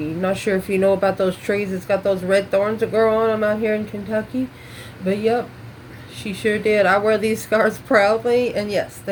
Not sure if you know about those trees. It's got those red thorns that grow on them out here in Kentucky, but yep, she sure did. I wear these scars proudly, and yes,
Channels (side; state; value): both; identical; correlation 1.00